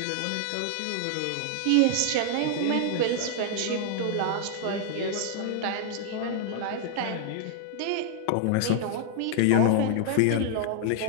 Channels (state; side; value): different; both; correlation 0.00